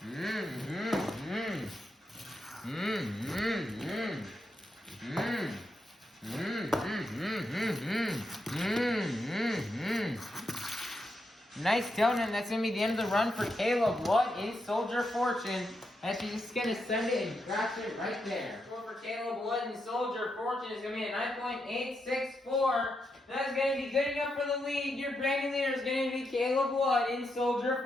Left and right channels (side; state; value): both; normal; correlation 0.84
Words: Nice donut. That's going to be the end of the run for Caleb Wood in Soldier Fortune. And she's just going to send it and crash it right there. Score for Caleb Wood in Soldier Fortune is going to be a 9.864. That's going to be good enough for the lead. Your brand new leader is going to be Caleb Wood in